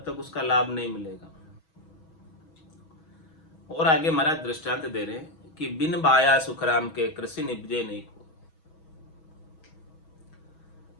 तक उसका लाभ नहीं मिलेगा। और आगे महाराज दृष्टांत दे रहे हैं कि बिन बाया सुखराम के कृषि निपजे नहीं को।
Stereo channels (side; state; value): right; late; 6.2 ms